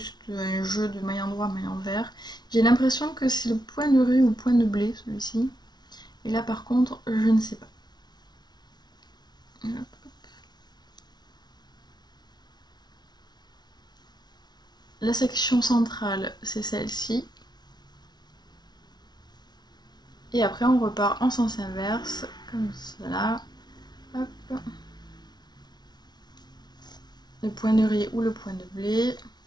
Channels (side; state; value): right; late; 0.20 ms